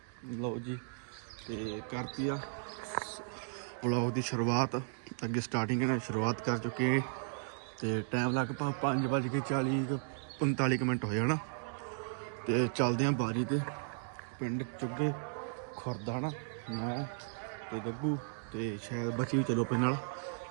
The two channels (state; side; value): silent; left; digital silence